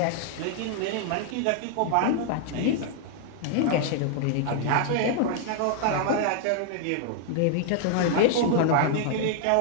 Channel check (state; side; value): different; both; correlation 0.00